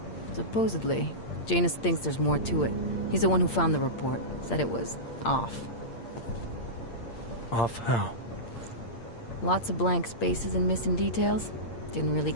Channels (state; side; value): late; right; 8.7 ms